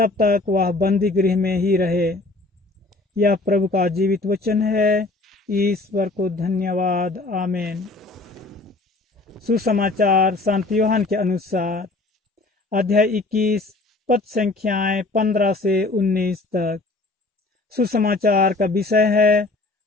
तक वह बंदी गृह में ही रहे। यह प्रभु का जीवित वचन है। ईश्वर को धन्यवाद। आमीन। सुसमाचार संत यूहन्ना के अनुसार, अध्याय 21 पद संख्याएं 15 से 19 तक। सुसमाचार का विषय है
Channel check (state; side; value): quieter; right; 3.2 dB